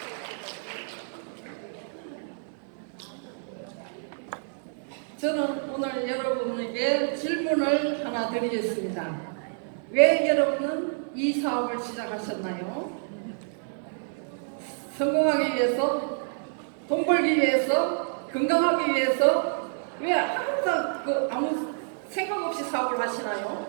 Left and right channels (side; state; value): left; silent; digital silence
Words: 저는 오늘 여러분에게 질문을 하나 드리겠습니다. 왜 여러분은 이 사업을 시작하셨나요? 성공하기 위해서, 돈 벌기 위해서, 건강하기 위해서, 왜 항상 아무 생각 없이 사업을